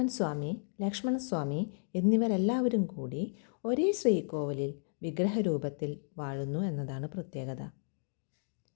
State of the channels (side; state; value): right; silent; digital silence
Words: സ്വാമി, ലക്ഷ്മണസ്വാമി എന്നിവരെല്ലാവരും കൂടി ഒരേ ശ്രീകോവിലിൽ വിഗ്രഹരൂപത്തിൽ വാഴുന്നു എന്നതാണ് പ്രത്യേകത.